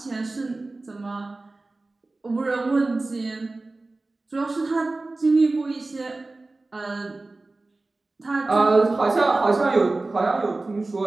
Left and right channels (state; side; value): quieter; left; 3.2 dB